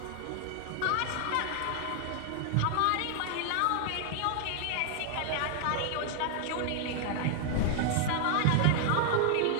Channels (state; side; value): different; both; correlation 0.00